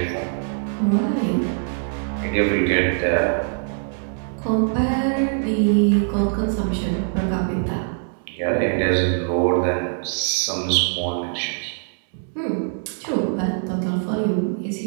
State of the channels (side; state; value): left; silent; 64 dB below the other